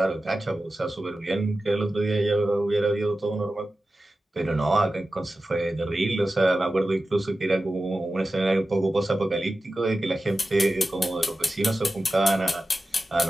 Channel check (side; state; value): both; normal; correlation 0.94